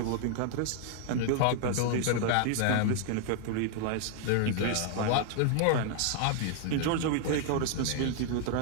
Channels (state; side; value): different; both; correlation -0.01